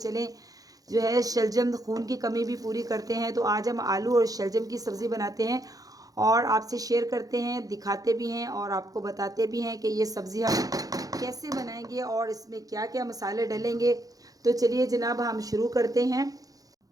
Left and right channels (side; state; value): left; late; 0.17 ms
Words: जो है शलजम खून की कमी भी पूरी करते हैं, तो आज हम आलू और शलजम की सब्ज़ी बनाते हैं और आपसे शेयर करते हैं, दिखाते भी हैं और आपको बताते भी हैं कि ये सब्ज़ी हम कैसे बनाएंगे और इसमें क्या क्या मसाले डलेंगे। तो चलिए जनाब हम शुरू करते हैं।